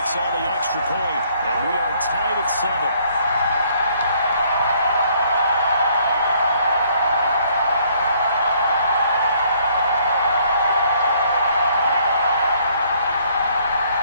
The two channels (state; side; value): inverted; both; correlation -0.64